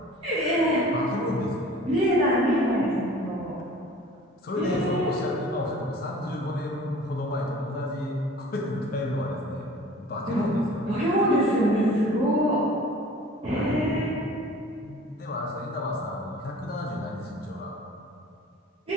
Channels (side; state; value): both; normal; correlation 0.46